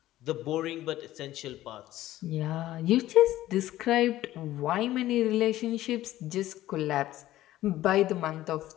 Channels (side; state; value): right; quieter; 14.7 dB